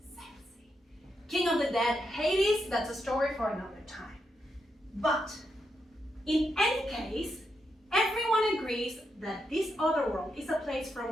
Sexy. King of the dead, Hades, that's a story for another time. But in any case, everyone agrees that this other world is a place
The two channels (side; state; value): both; normal; correlation 0.83